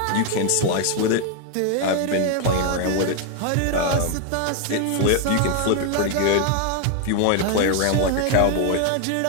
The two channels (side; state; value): both; different; correlation 0.01